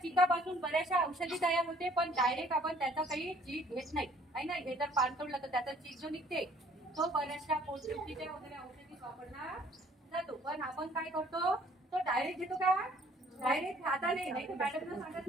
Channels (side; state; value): both; normal; correlation 0.58